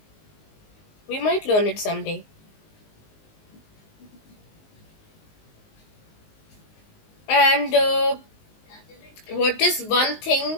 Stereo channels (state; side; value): late; right; 19 ms